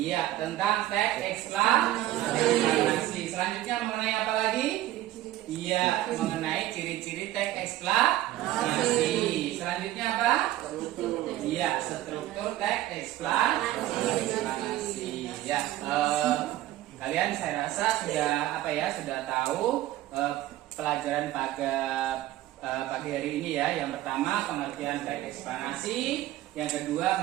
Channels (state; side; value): quieter; left; 14.7 dB